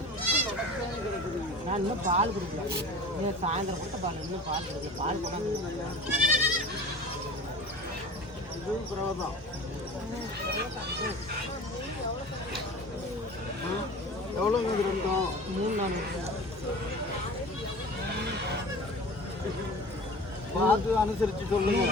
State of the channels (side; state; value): both; normal; correlation 0.38